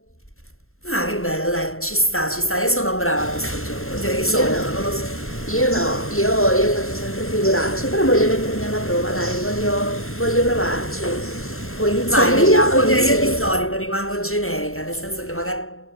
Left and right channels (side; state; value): right; late; 0.62 ms